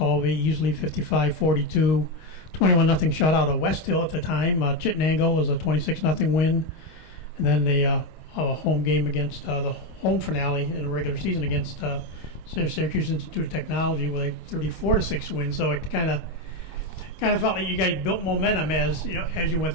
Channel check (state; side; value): late; right; 26 ms